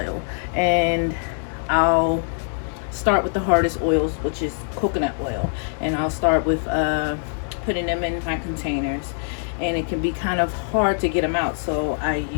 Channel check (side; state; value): right; silent; digital silence